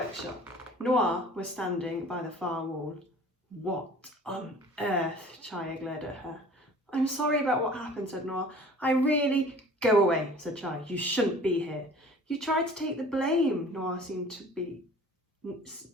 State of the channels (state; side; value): normal; both; correlation 0.46